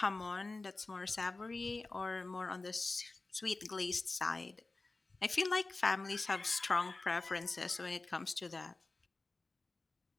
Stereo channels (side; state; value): right; quieter; 3.4 dB